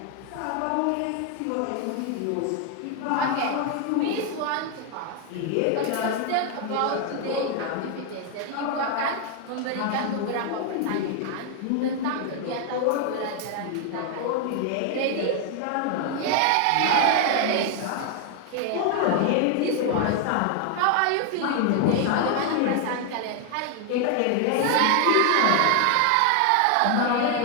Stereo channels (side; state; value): both; different; correlation 0.00